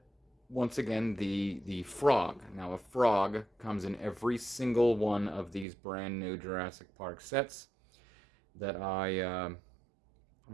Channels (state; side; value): drops out; left; at 5.7 s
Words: once again, the frog. Now, a frog comes in every single one of these brand new Jurassic Park sets that I